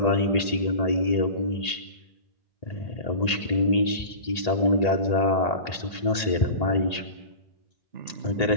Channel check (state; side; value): late; right; 1.8 ms